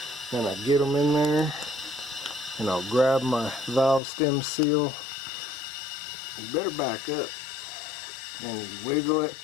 and I get them in there, and I'll grab my valve stem seal. You better back up, and you wiggle it.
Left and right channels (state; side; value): drops out; right; at 4.0 s